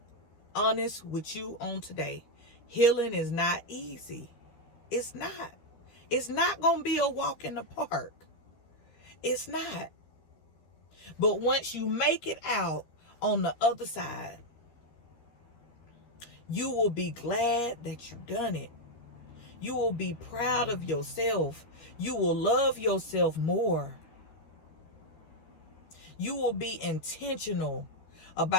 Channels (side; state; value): right; late; 13 ms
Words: honest with you on today. Healing is not easy. It's not. It's not going to be a walk in the park. It's not. But once you make it out on the other side, you will be glad that you've done it. You will be proud of yourself. You will love yourself more. You will be intentional